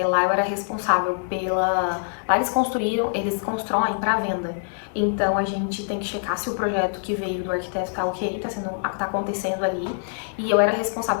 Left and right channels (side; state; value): right; silent; 62 dB below the other